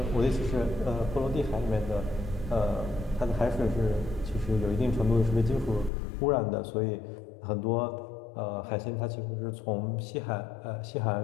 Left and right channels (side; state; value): right; drops out; at 5.9 s